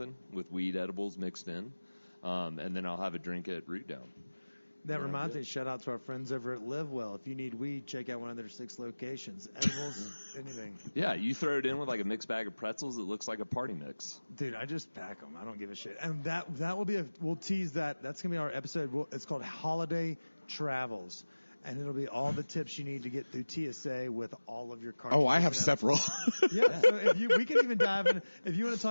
with weed edibles mixed in, and then I'll have a drink at Root Down. That reminds me, shout out to our friends over at Live Well. If you need weed, check out one of their 6 locations. Edibles, anything. Yeah, you throw it in with like a mixed bag of pretzels. It looks like a party mix. Dude, I just pack them. I don't give a shit. And that will be we'll tease that. That's going to be our episode. It's called Holiday Travels. And it'll be all the tips you need to get through TSA with all of your cards. Oh, I have several. Yeah, so we can even dive in. If you want to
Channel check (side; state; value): both; inverted; correlation -1.00